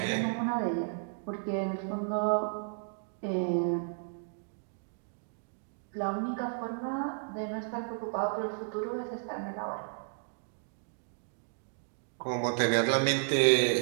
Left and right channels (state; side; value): silent; left; 56 dB below the other